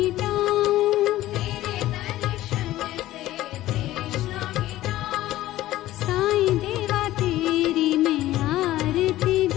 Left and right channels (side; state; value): right; quieter; 15.3 dB